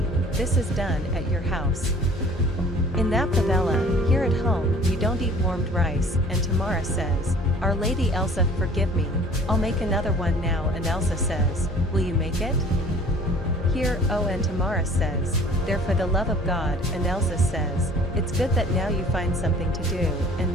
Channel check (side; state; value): both; normal; correlation 0.50